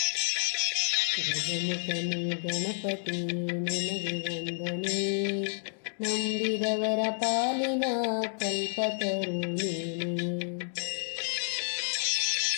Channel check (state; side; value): silent; right; 58 dB below the other